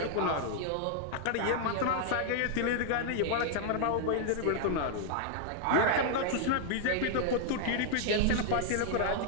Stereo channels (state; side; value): different; both; correlation -0.01